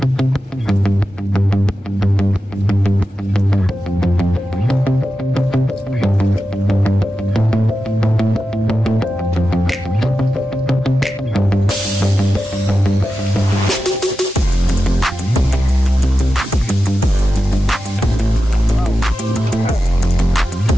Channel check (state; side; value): normal; both; correlation 0.91